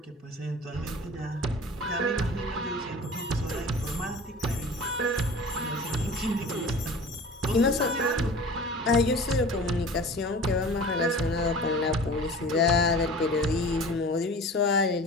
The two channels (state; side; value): normal; both; correlation 0.40